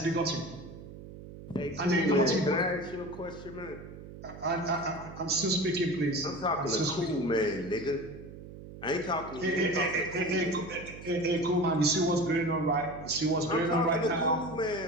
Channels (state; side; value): noise; right; hum, 14 dB below the sound